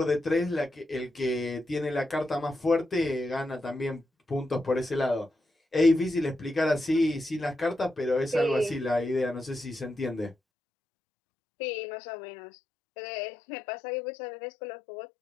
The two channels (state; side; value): drops out; right; at 10.4 s